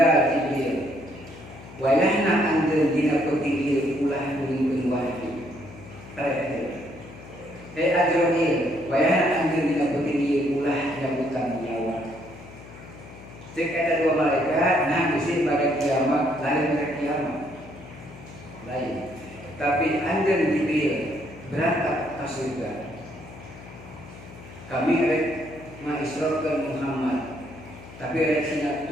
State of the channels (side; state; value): left; noise; hum, 17 dB below the sound